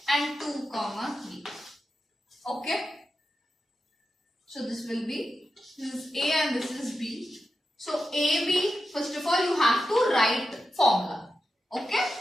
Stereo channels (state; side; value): normal; both; correlation 0.90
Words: and 2, 3. Okay? So this will be, this is A and this is B. So AB, first of all, you have to write formula. Okay?